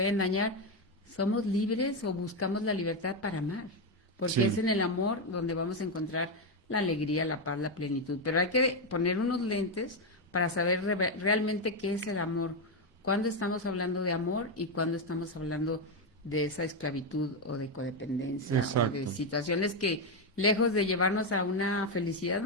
dañar? ¿Somos libres o buscamos la libertad para amar? Porque es sí, en el amor donde vamos a encontrar la alegría, la paz, la plenitud. Pero hay que poner unos lentes para saber realmente qué es el amor. ¿Cuándo estamos hablando de amor y cuándo estamos hablando de esa esclavitud o de codependencia o de exacto. situaciones que, lejos de llevarnos a una felicidad,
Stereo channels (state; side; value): normal; both; correlation 0.06